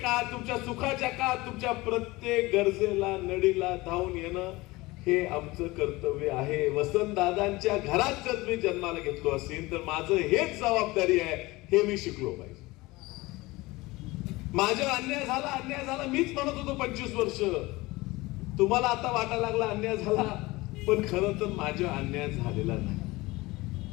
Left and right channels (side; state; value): right; quieter; 21.2 dB